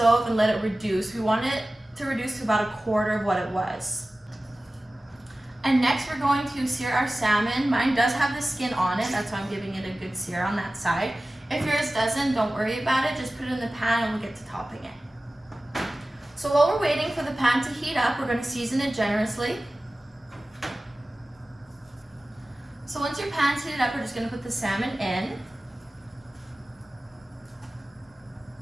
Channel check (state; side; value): normal; both; correlation 0.96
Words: and let it reduce. We want it to reduce to about 1/4 of what it was. And next we're going to sear our salmon. Mine does have the skin on it, that's why I'm giving it a good sear on that side. If yours doesn't, don't worry about it, just put it in the pan and we'll get to topping it. So while we're waiting for the pan to heat up, we're going to season it generously. So once your pan's heated up, we're just going to put the salmon in.